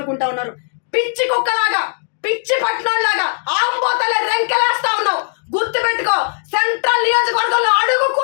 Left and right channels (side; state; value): right; silent; digital silence